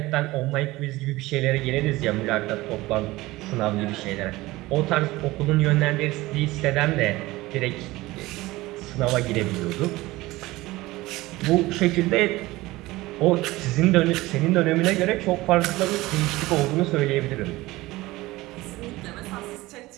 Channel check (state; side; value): quieter; left; 19.2 dB